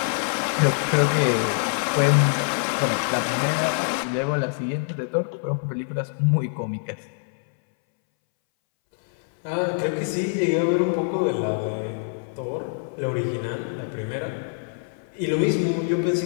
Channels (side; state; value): right; silent; 62 dB below the other